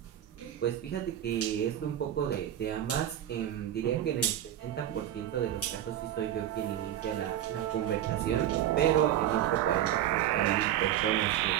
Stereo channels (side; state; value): left; quieter; 11.6 dB